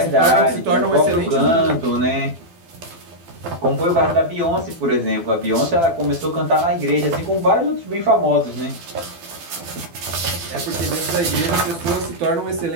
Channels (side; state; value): left; late; 12 ms